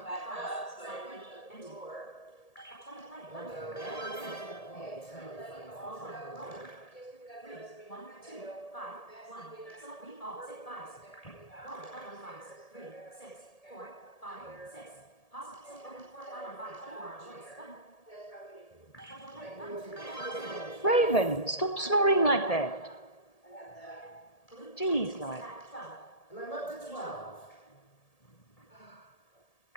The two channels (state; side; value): late; right; 1.8 ms